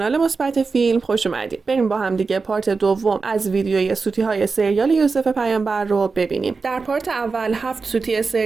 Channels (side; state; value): left; quieter; 4.5 dB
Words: مثبت فیلم خوش اومدید. بریم با هم دیگه پارت دوم از ویدیوی سوتی های سریال یوسف پیامبر رو ببینیم. در پارت اول 7 سوتی